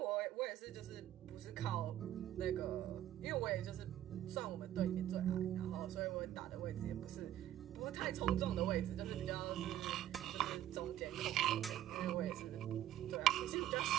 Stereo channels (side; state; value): left; quieter; 12.4 dB